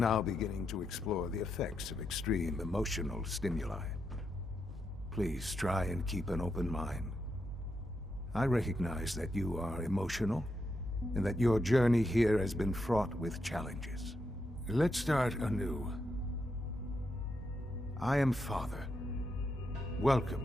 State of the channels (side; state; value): both; normal; correlation 0.83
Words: beginning to explore the effects of extreme emotional stimuli. Please try and keep an open mind. I recognize that you are emotional, and that your journey here has been fraught with challenges. Let's start anew. I am Father.